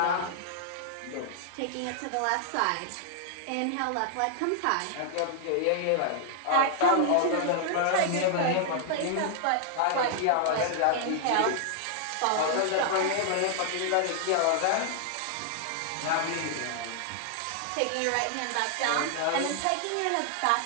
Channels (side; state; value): both; different; correlation -0.01